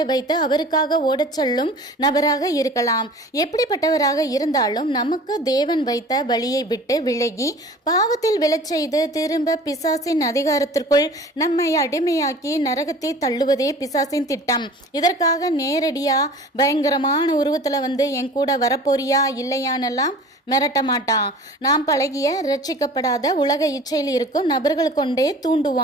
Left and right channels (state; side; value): normal; both; correlation 0.43